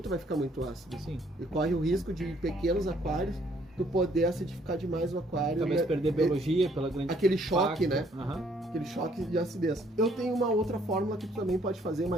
vai ficar muito ácido. Sim. E corre o risco de, em pequenos aquários, tu poder acidificar demais o aquário. Talvez perder biologia pela grande aquele choque, impacto. né? Aquele choque de acidez. Eu tenho uma outra fórmula que tu também pode fazer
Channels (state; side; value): normal; both; correlation 0.65